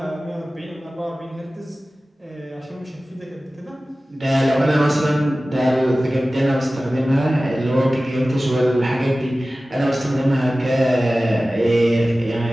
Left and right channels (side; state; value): both; normal; correlation 0.96